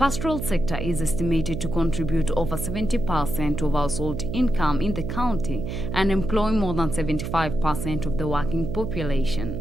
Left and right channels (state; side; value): noise; right; hum, 5 dB below the sound